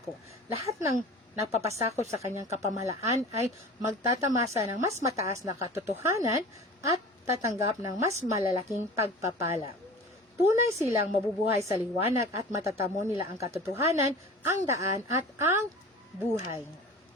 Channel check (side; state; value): both; normal; correlation 0.39